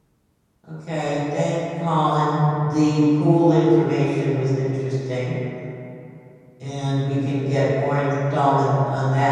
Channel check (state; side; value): identical; both; correlation 1.00